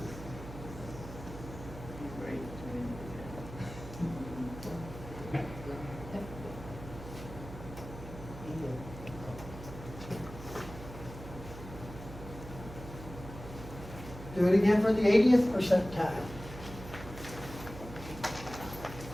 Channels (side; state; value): right; noise; hum, 12 dB below the sound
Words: Do it again for the 80th percentile.